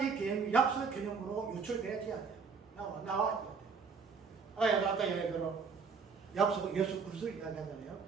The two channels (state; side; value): quieter; left; 5.4 dB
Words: 이 개념이 약속 개념으로 유출되어야 돼요. 나와야 돼요. 아까 얘기대로 약속 예수 그리스도 이야기하잖아요.